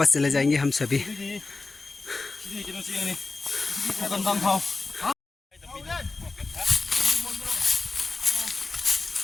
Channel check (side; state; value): right; quieter; 3.7 dB